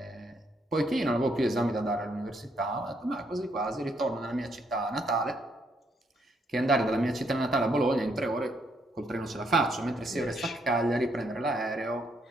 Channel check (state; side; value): normal; both; correlation 0.74